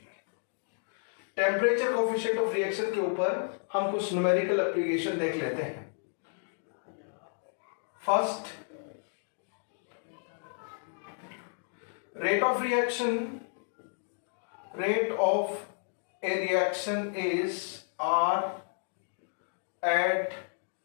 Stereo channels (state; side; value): silent; right; digital silence